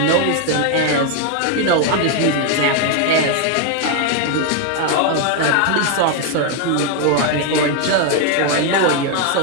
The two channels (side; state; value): both; different; correlation 0.01